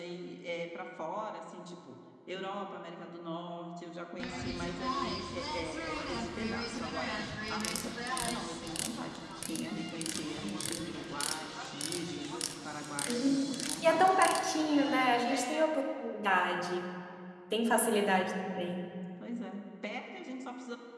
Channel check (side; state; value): both; identical; correlation 1.00